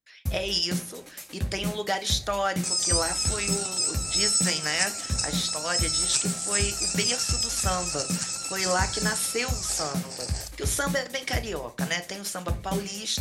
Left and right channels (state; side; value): identical; both; correlation 1.00